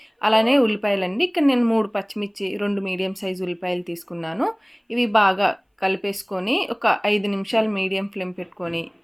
అలానే ఉల్లిపాయలండి. ఇక్కడ నేను 3 పచ్చిమిర్చి 2 మీడియం సైజు ఉల్లిపాయలు తీసుకున్నాను. ఇవి బాగా కలిపేసుకొని ఒక 5 నిమిషాలు మీడియం ఫ్లేమ్ పెట్టుకొని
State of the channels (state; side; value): identical; both; correlation 1.00